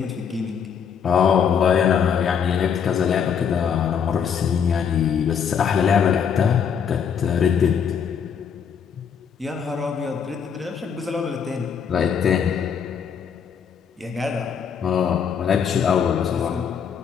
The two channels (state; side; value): quieter; right; 7.3 dB